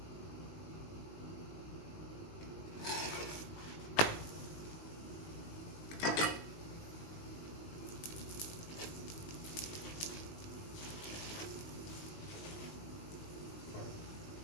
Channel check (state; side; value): late; right; 19 ms